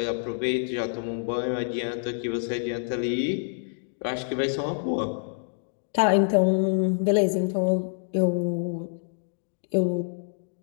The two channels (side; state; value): right; silent; digital silence